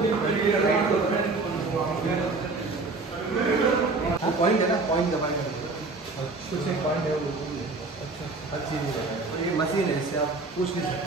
पॉइंट है ना, पॉइंट दबाएंगे कुछ एक पॉइंट है वो, अच्छा हर चीज़ है, ये मशीन है, इससे आप पूछ नहीं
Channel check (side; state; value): left; quieter; 3.6 dB